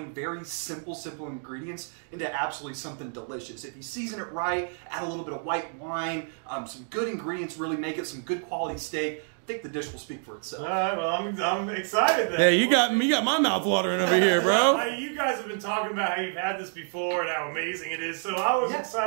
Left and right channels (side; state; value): left; silent; 59 dB below the other